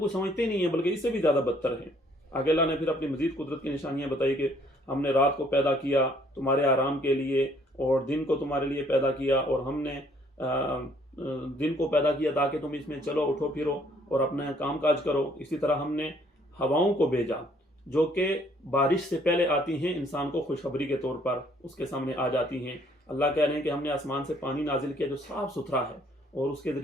سمجھتے نہیں ہیں بلکہ اس سے بھی زیادہ بدتر ہیں۔ آگے اللہ نے پھر اپنی مزید قدرت کی نشانیاں بتائی کہ ہم نے رات کو پیدا کیا تمہارے آرام کے لیے، اور دن کو تمہارے لیے پیدا کیا، اور ہم نے دن کو پیدا کیا تاکہ تم اس میں چلو اٹھو پھرو اور اپنا کام کاج کرو۔ اسی طرح ہم نے ہواؤں کو بھیجا جو کہ بارش سے پہلے آتی ہیں، انسان کو خوشخبری کے طور پر اس کے سامنے آ جاتی ہیں۔ اللہ کہہ رہے ہیں کہ ہم نے آسمان سے پانی نازل کیا جو صاف ستھرا ہے، اور اس کے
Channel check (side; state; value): both; normal; correlation 0.63